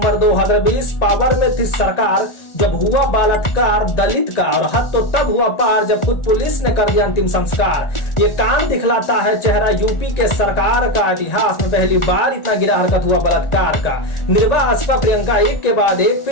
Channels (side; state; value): right; late; 1.4 ms